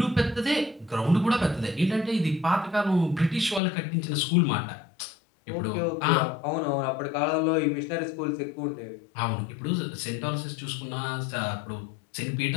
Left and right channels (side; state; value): right; drops out; at 3.6 s